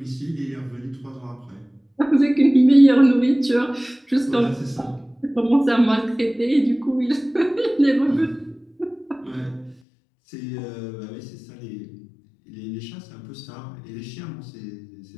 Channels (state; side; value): drops out; right; at 9.8 s